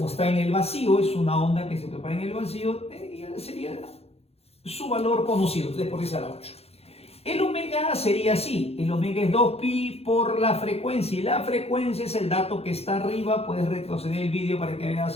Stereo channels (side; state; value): right; late; 0.29 ms